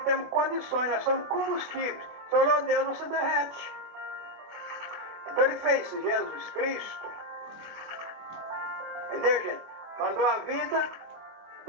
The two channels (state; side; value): late; left; 25 ms